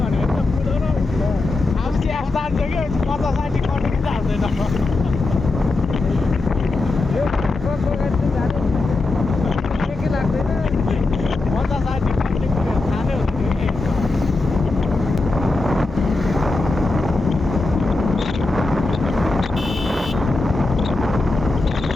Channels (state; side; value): quieter; right; 3.3 dB